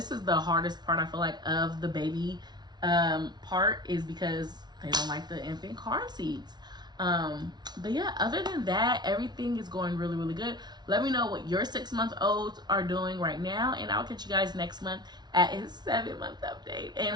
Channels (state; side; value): late; left; 0.20 ms